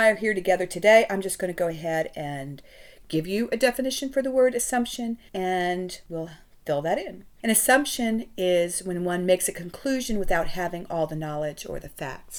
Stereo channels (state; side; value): identical; both; correlation 1.00